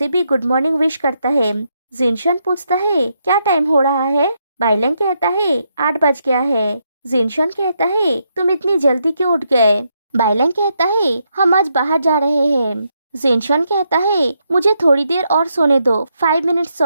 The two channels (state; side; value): inverted; both; correlation -0.79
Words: भी गुड मॉर्निंग विश करता है। जिनशान पूछता है क्या टाइम हो रहा है? बाइलैंग कहता है 8 बज गया है। जिनशान कहता है तुम इतनी जल्दी क्यों उठ गए? बाइलैंग कहता है हम आज बाहर जा रहे हैं। जिनशान कहता है मुझे थोड़ी देर और सोने दो, 5 मिनट्स